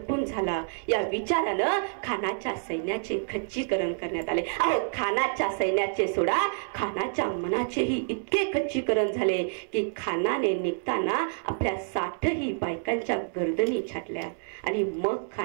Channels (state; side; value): silent; left; 59 dB below the other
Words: झाला या विचारानं खानाच्या सैन्याचे खच्चीकरण करण्यात आले. अहो, खानाच्या सैन्याचे सोडा, खानाच्या मनाचेही इतके खच्चीकरण झाले की खानाने निघताना आपल्या 60ही बायकांच्या गर्दनी छाटल्या आणि मग